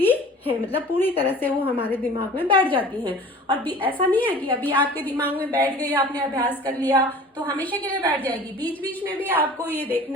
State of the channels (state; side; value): normal; both; correlation 0.44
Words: हैं, मतलब पूरी तरह से वो हमारे दिमाग में बैठ जाती हैं। और भी ऐसा नहीं है कि अभी आपके दिमाग में बैठ गई, आपने अभ्यास कर लिया तो हमेशा के लिए बैठ जाएगी। बीच बीच में भी आपको ये